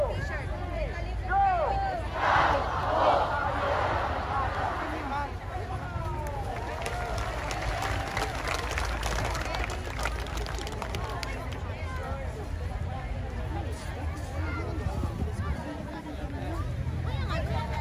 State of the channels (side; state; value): both; identical; correlation 1.00